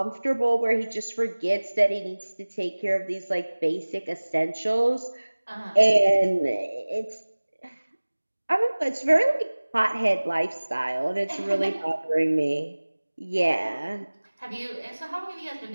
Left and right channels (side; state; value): both; inverted; correlation -1.00